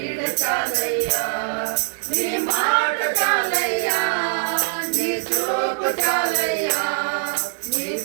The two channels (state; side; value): silent; left; digital silence